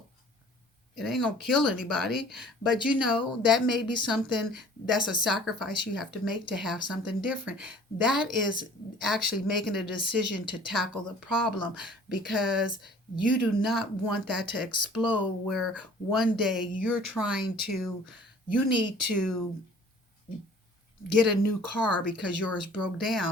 It ain't gonna kill anybody, but that may be something, that's a sacrifice you have to make to have something different. That is actually making a decision to tackle the problem, because you do not want that to explode, where one day you need to get a new car because yours broke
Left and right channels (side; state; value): both; normal; correlation 0.50